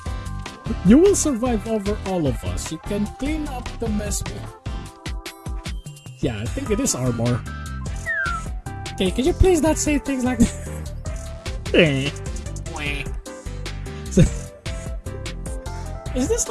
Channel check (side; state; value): both; identical; correlation 1.00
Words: You will survive over all of us. You can clean up the mess. Yeah, I think it is armor. Okay, can you please not say things like that? Is this